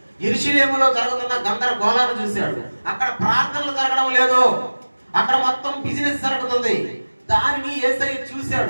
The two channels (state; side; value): inverted; both; correlation -1.00